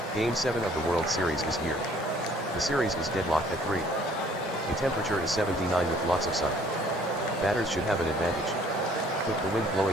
Game 7 of the World Series is here. The series is deadlocked at 3. The temperature is 79 with lots of sun. Batters should have an advantage. With the wind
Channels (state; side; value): normal; both; correlation 0.58